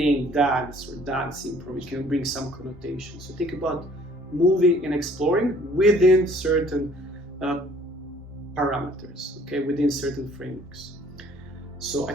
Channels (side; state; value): both; normal; correlation 0.56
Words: dance or dance improv, it can bring some connotation. So think about moving and exploring within certain parameters, okay, within certain frameworks. So I